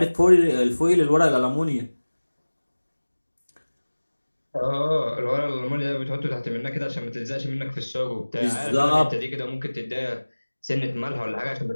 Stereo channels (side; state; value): both; inverted; correlation -1.00